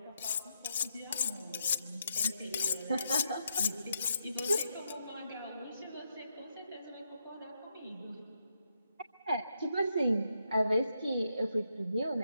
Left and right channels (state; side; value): inverted; both; correlation -0.80